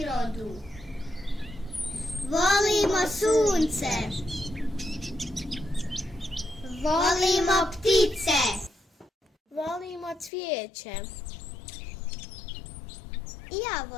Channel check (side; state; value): right; drops out; at 10.3 s